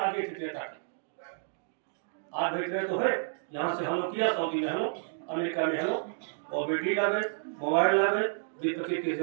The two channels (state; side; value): silent; left; digital silence